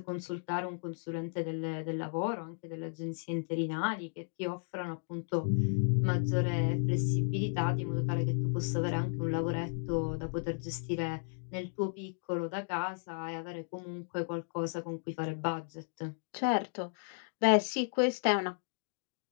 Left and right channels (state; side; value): silent; right; digital silence